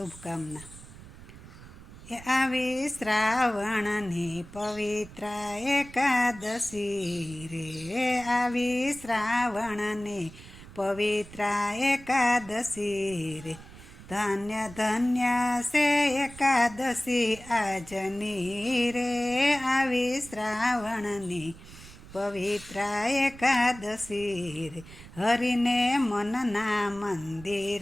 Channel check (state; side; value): noise; right; rumble, 17 dB below the sound